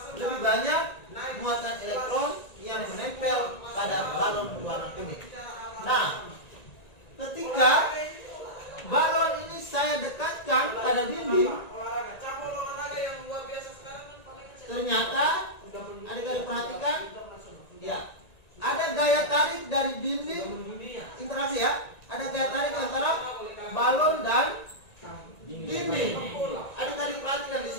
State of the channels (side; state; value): right; late; 1.9 ms